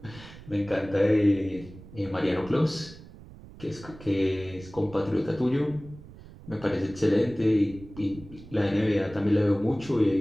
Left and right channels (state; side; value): noise; right; rumble, 18 dB below the sound